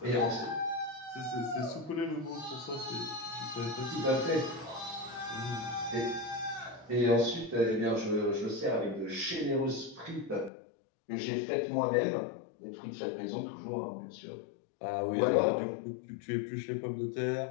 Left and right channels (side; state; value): right; drops out; at 10.5 s